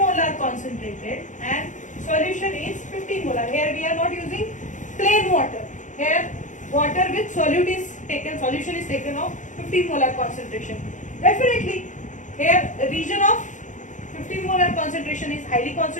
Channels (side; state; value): right; late; 0.36 ms